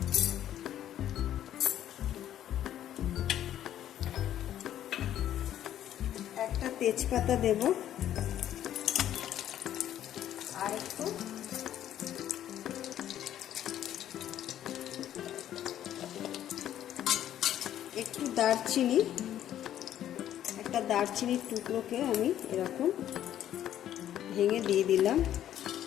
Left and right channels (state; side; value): quieter; right; 11.4 dB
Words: একটা তেজপাতা দেব, আর একটু দারচিনি, একটা দারচিনির টুকরোকে আমি এরকম ভেঙে দিয়ে দিলাম।